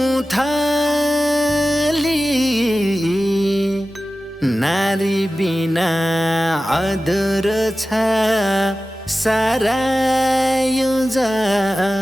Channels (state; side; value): normal; both; correlation 0.95